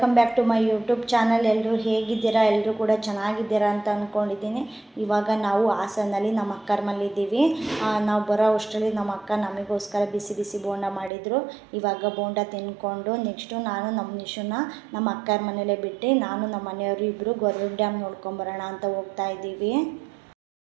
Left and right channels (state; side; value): drops out; left; at 11.1 s